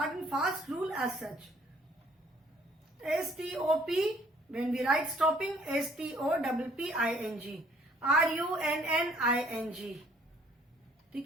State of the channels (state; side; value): normal; both; correlation 0.60